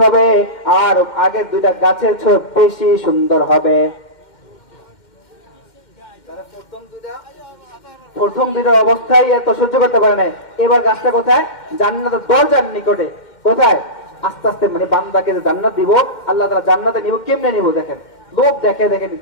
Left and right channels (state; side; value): late; right; 2.1 ms